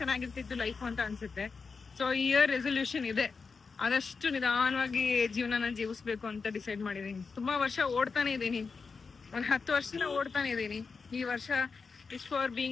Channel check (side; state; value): right; quieter; 4.9 dB